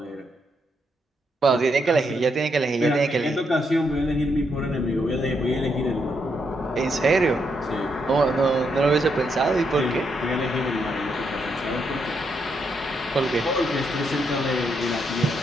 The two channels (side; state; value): both; normal; correlation 0.78